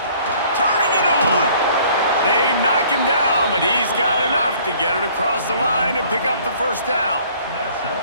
Turning it on! They knock him down, but he's got enough to get it across the line and pick up the 1st down.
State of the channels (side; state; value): both; inverted; correlation -0.56